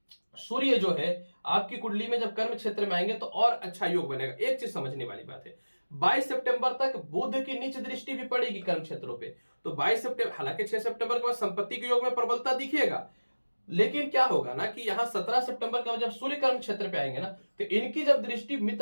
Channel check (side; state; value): both; inverted; correlation -1.00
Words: सूर्य जो है आपकी कुंडली में जब कर्म क्षेत्र में आएंगे तो और अच्छा योग बनेगा। एक चीज समझने वाली बात है, 22 सितंबर तक बुध की नीच दृष्टि भी पड़ेगी कर्म क्षेत्रों पे। तो 22 सितंबर, हालांकि 6 सितंबर के बाद संपत्ति के योग में प्रबलता दिखेगा, लेकिन क्या होगा ना कि यहां 17 सितंबर के बाद जब सूर्य कर्म क्षेत्र पे आएंगे ना तो इनकी जब दृष्टि